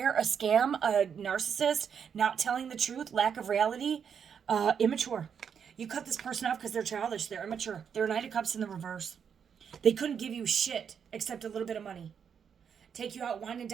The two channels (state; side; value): quieter; left; 7.4 dB